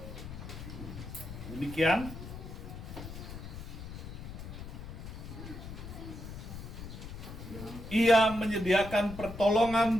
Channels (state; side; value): noise; left; rumble, 10 dB below the sound